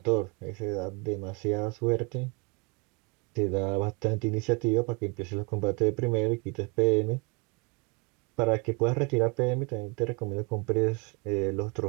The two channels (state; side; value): quieter; left; 30.2 dB